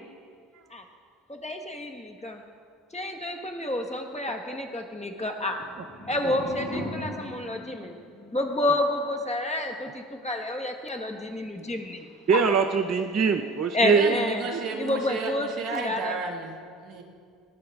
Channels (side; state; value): both; normal; correlation 0.42